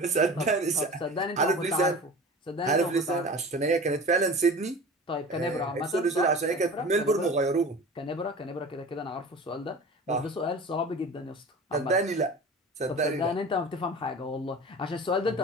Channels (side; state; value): both; normal; correlation 0.37